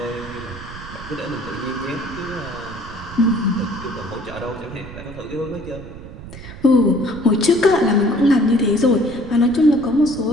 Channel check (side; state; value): right; noise; rumble, 14 dB below the sound